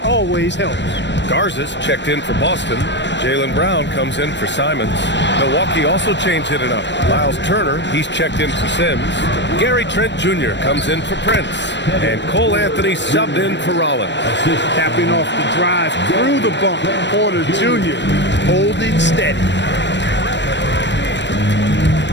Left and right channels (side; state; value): right; late; 0.52 ms